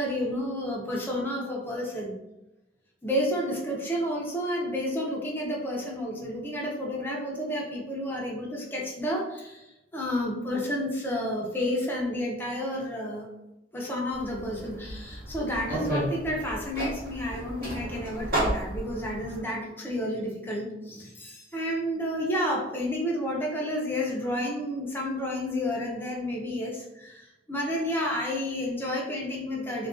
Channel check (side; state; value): both; normal; correlation 0.39